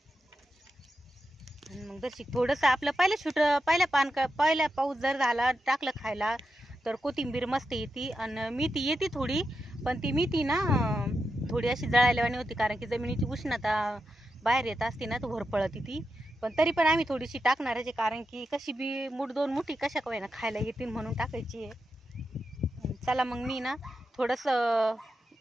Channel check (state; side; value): normal; both; correlation 0.87